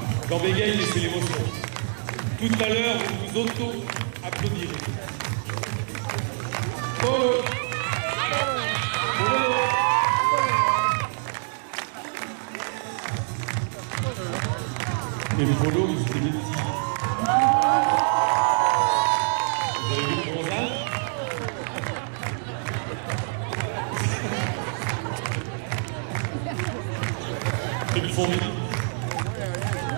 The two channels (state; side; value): silent; left; 61 dB below the other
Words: Quand bégaye, laissez l'émotion. Tout à l'heure, vous vous auto-applaudirez. Et le polo, c'était des petits. Vous avez vu le bronzage? C'est du fond.